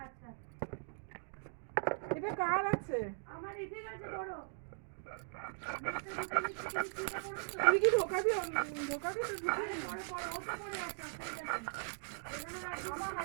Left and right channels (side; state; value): left; silent; digital silence